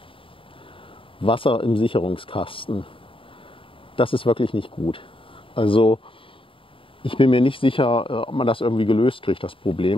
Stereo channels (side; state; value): right; late; 0.25 ms